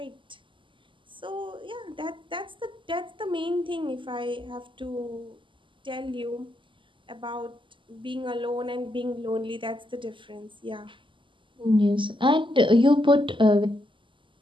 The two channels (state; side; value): late; left; 0.24 ms